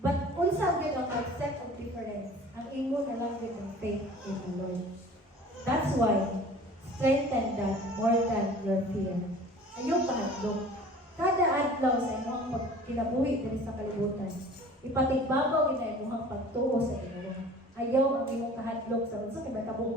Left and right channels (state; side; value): normal; both; correlation 0.45